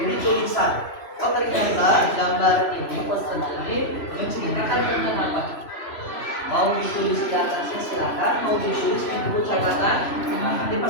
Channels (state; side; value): late; right; 3.0 ms